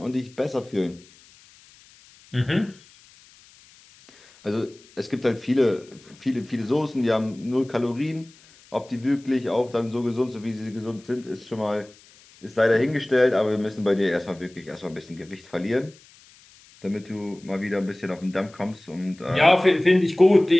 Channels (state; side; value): noise; left; hiss, 26 dB below the sound